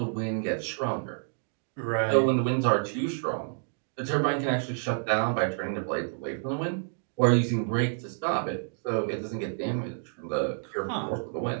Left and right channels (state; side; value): silent; left; digital silence